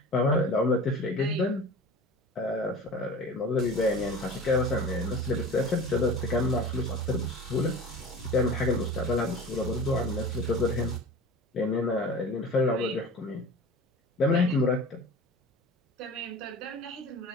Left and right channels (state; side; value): normal; both; correlation 0.37